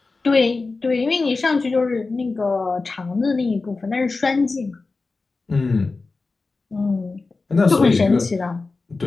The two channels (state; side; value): quieter; right; 3.8 dB